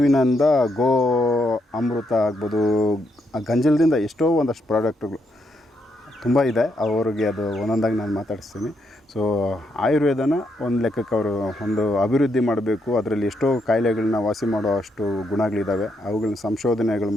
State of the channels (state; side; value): normal; both; correlation 0.78